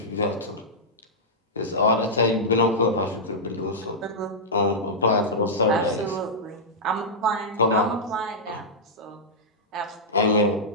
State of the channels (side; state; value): both; normal; correlation -0.10